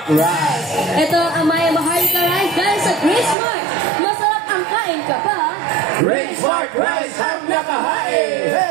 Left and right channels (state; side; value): drops out; left; at 3.4 s